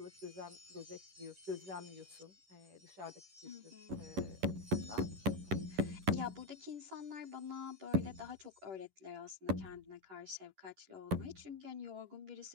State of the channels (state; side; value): late; left; 11 ms